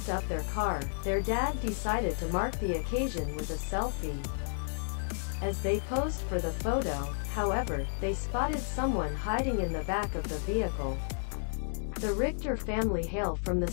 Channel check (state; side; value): silent; right; digital silence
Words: up their car, their dad decided to mark the occasion with a selfie. As they posed for the photo, however, they spotted someone hiding in the back of the vehicle. The Richter family hail from the